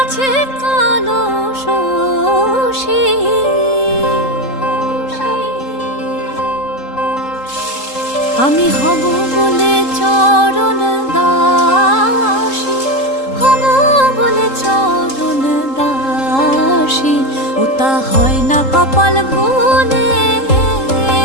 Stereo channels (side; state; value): right; late; 3.7 ms